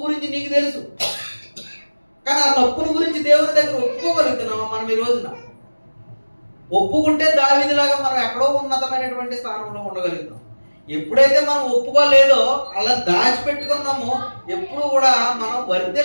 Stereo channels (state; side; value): inverted; both; correlation -1.00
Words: గురించి నీకు తెలుసు, కానీ ఆ తప్పుల గురించి దేవుని దగ్గర ఒప్పుకోగలుగుతున్నామా మనం ఈ రోజున? ఒప్పుకుంటే దావీదులాగా మనం ఎక్కడో ఉన్నతమైనటువంటి స్థానంలో ఉండగలుగుతాం. ఎప్పుడైతే మనం ఒప్పుకోలేదో, అలా దాచిపెట్టుకున్నామో, ఎప్పుడు కూడా మనం